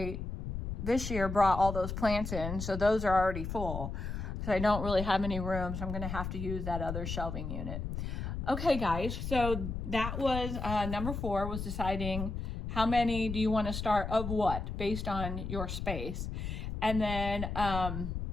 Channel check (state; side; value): noise; left; rumble, 5 dB below the sound